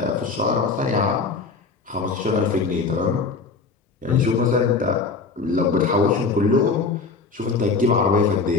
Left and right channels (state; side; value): quieter; right; 4.5 dB